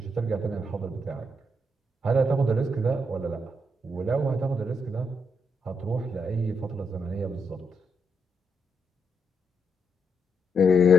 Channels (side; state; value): both; normal; correlation 0.79